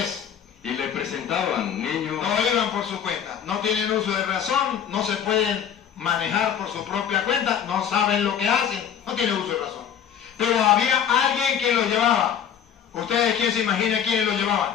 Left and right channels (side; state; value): right; quieter; 8.6 dB